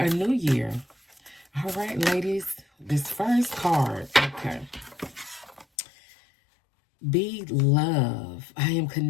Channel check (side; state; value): right; drops out; at 5.7 s